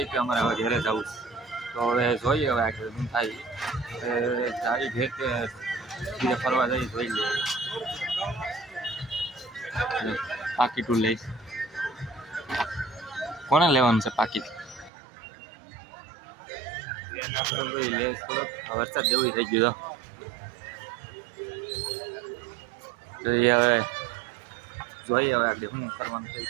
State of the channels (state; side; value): drops out; left; at 14.9 s